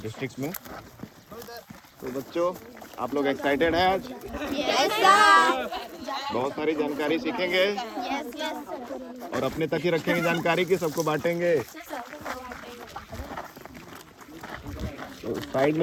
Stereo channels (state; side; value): identical; both; correlation 1.00